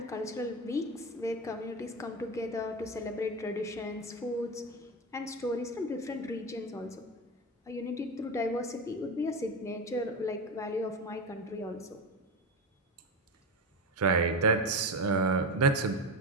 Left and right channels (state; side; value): normal; both; correlation 0.20